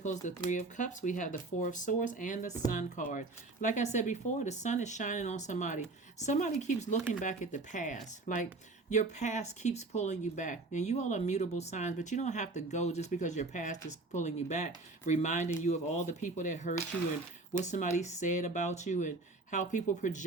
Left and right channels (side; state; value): left; quieter; 3.3 dB